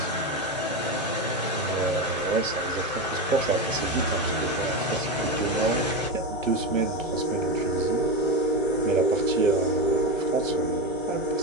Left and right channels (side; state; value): both; normal; correlation 0.17